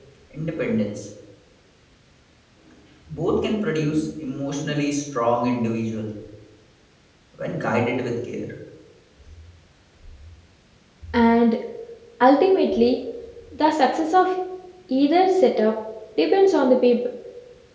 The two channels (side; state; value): both; identical; correlation 1.00